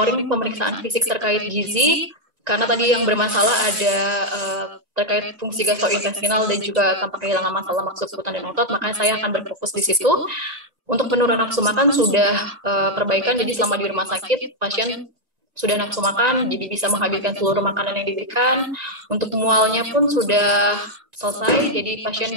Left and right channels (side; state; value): left; late; 1.9 ms